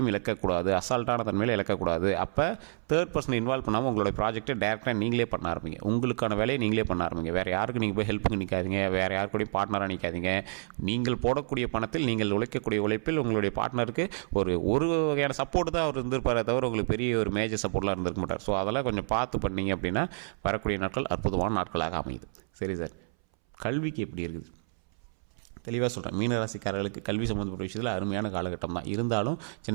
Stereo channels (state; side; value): silent; left; 58 dB below the other